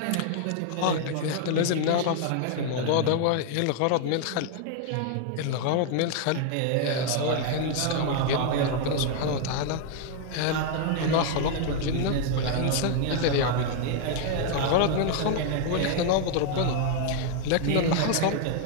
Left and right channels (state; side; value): different; both; correlation 0.00